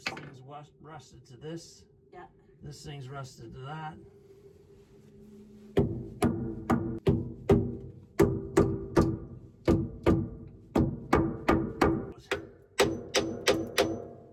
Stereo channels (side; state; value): both; identical; correlation 1.00